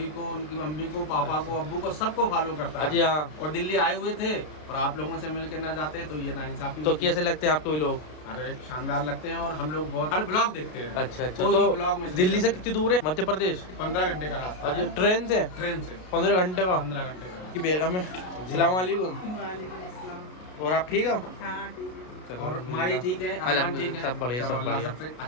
को, उनकी मम्मी को, पापा को, अब्बू को, सबको फॉलो करता अजी है। हाँ। और दिल्ली आए हुए थे और आप लोगों से मिलकर ना जाते तो ये नाइंसाफी तो होती। कैसे लगते हैं आपको ये लोग? अरे शानदार लगते हैं और हम लोग बहुत हर ब्लॉग देखते हैं। अच्छा अच्छा। कोई तो भी ब्लॉग में दिल्ली से कितनी दूर है मध्य प्रदेश? 15 घंटे का रास्ता अजी है। ट्रेन से? ट्रेन से 15 घंटे का। 15 घंटे का। की बेगम है। सलाम वालेकुम। और आप ठीक हो? चलो, और माही ठीक है, अरमान ठीक है, सब बढ़िया चलो, सब अल्लाह बढ़िया। सबसे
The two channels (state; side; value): late; right; 33 ms